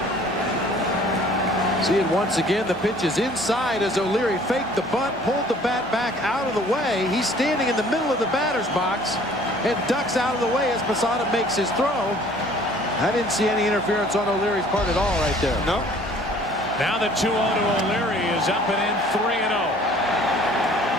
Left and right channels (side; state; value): both; normal; correlation 0.53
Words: See it once again. The pitch is inside as O'Leary faked the bunt, pulled the bat back out of the way. He's standing in the middle of the batter's box and ducks out of the way as Posada makes his throw. I didn't see any interference on O'Leary's part at all right there. No. Now the 2-0 to O'Leary is up and in, 3-0.